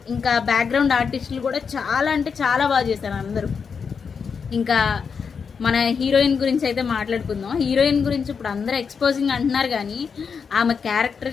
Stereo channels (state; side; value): quieter; right; 6.0 dB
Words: ఇంకా బ్యాక్గ్రౌండ్ ఆర్టిస్టులు కూడా చాలా అంటే చాలా బాగా చేశారు అందరూ. ఇంకా మన హీరోయిన్ గురించి అయితే మాట్లాడుకుందాం. హీరోయిన్ గురించి ఇప్పుడు అందరూ ఎక్స్పోజింగ్ అంటున్నారు, కానీ ఆమె క్యారెక్టర్